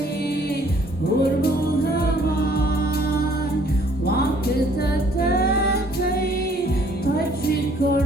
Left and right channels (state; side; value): normal; both; correlation 0.60